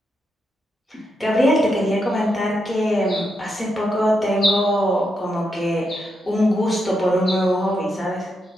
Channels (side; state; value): both; normal; correlation 0.83